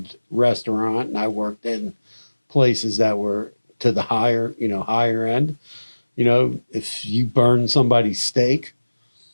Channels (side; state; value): both; inverted; correlation -1.00